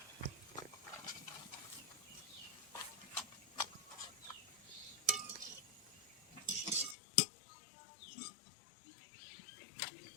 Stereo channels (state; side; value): drops out; right; at 7.0 s